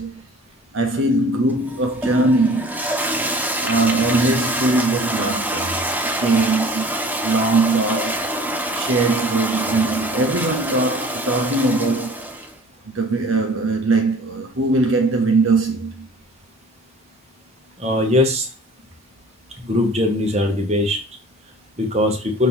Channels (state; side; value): normal; both; correlation 0.47